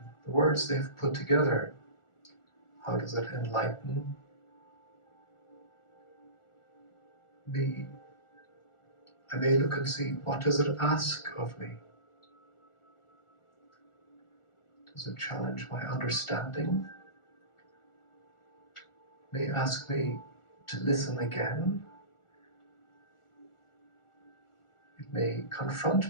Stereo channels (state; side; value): late; right; 1.4 ms